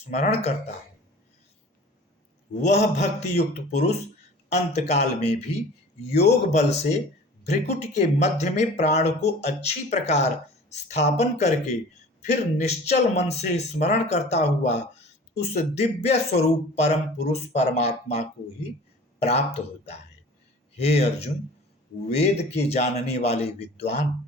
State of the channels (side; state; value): both; normal; correlation 0.43